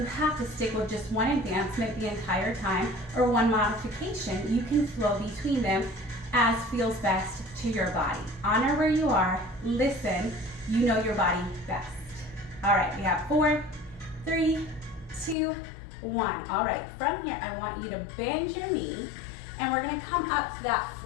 have to stick with just one advancement the entire time or one modification. You can flow between them as feels best to your body. Honor where you are, listen, you know your body best. All right, we have 4, 3, 2, 1. All right, from here, I want you to bend your knee, and we're gonna come up to that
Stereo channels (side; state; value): right; drops out; at 15.4 s